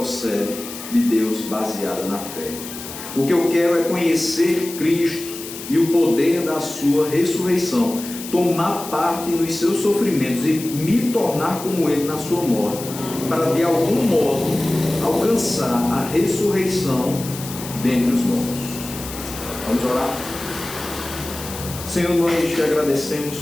de Deus baseada na fé. O que eu quero é conhecer Cristo e o poder da sua ressurreição, tomar parte nos seus sofrimentos e me tornar como ele na sua morte, para de algum modo alcançar a ressurreição dentre os mortos. Vamos orar? Senhor, nós te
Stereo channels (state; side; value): noise; left; hiss, 11 dB below the sound